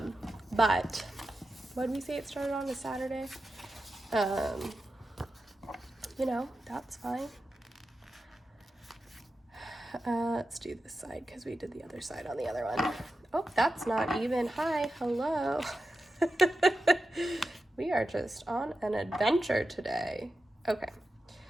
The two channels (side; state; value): both; normal; correlation 0.91